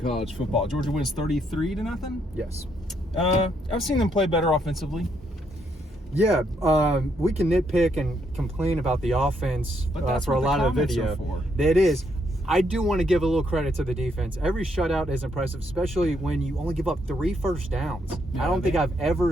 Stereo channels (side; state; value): both; normal; correlation 0.75